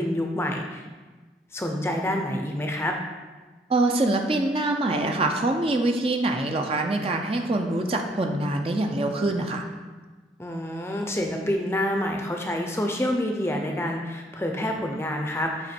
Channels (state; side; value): normal; both; correlation 0.65